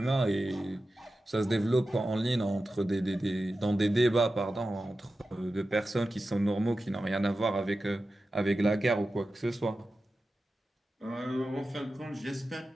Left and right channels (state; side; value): normal; both; correlation 0.93